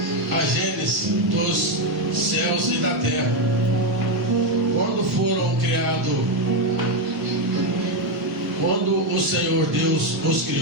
a gênese dos céus e da terra. Quando foram criados, quando o Senhor Deus os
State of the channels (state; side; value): late; left; 1.0 ms